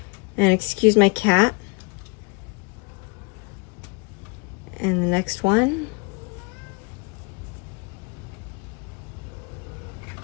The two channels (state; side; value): quieter; right; 29.6 dB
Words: And excuse my cat. And the next one.